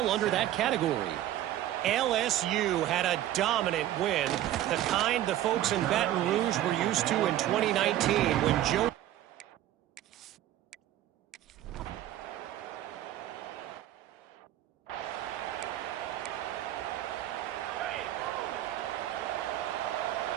under that category. LSU had a dominant win, the kind the folks in Baton Rouge were used to in 2019 when Joe...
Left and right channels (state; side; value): quieter; left; 13.2 dB